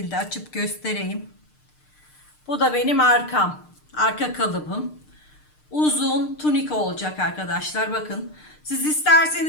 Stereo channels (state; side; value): late; right; 6.6 ms